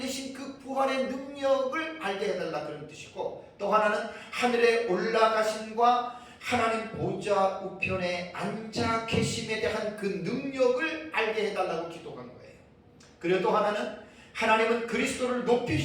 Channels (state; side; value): identical; both; correlation 1.00